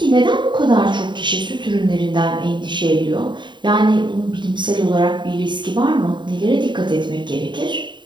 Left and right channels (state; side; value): late; left; 0.23 ms